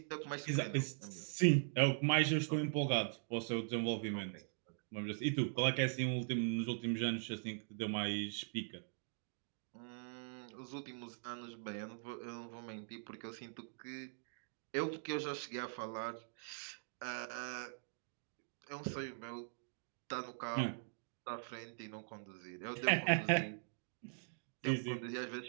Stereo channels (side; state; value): left; silent; digital silence